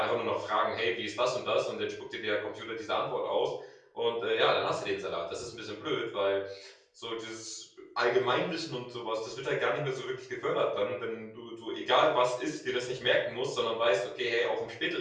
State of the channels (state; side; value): identical; both; correlation 1.00